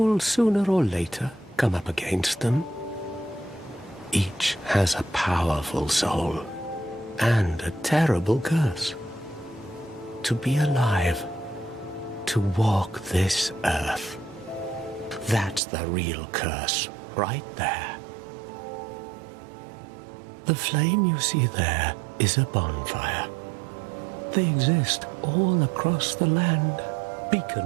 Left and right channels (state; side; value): drops out; left; at 15.6 s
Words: sooner or later come up against them. Each has a powerful soul and a terrible curse. To be alive, to walk this earth, that's the real curse right there. The flame you see there is a bonfire. They exist all across the land,